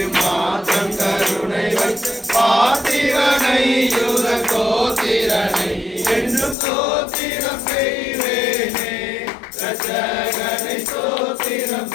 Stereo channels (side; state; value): right; drops out; at 6.6 s